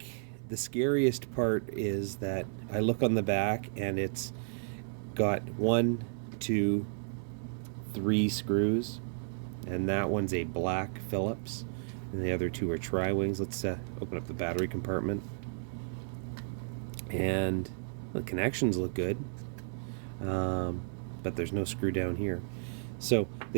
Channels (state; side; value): silent; left; 56 dB below the other